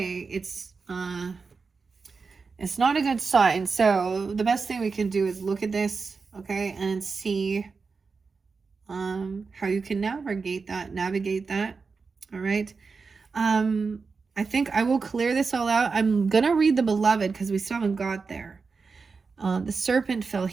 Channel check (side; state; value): left; quieter; 4.7 dB